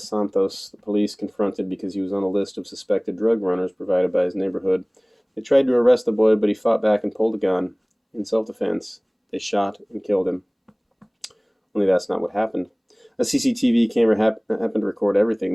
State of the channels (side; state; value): both; identical; correlation 1.00